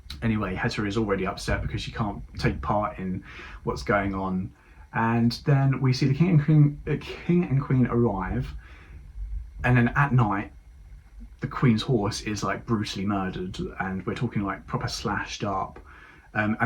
Anyway, Hetta is already upset because she can't take part in what's going on. And then we see the king and queen arrive, and then at night the queen's horse is like brutally murdered, and we're talking like proper slashed up.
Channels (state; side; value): identical; both; correlation 1.00